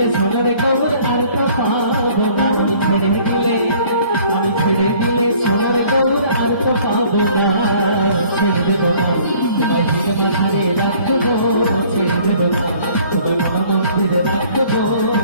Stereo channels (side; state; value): both; inverted; correlation -0.56